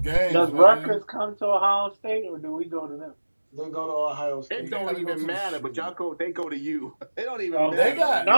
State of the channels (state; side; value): inverted; both; correlation -1.00